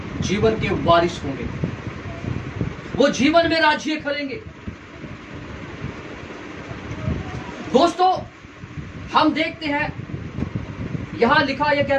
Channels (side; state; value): both; identical; correlation 1.00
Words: के वारिस होंगे, वो जीवन में राज्य करेंगे। दोस्तों, हम देखते हैं यहां लिखा, यह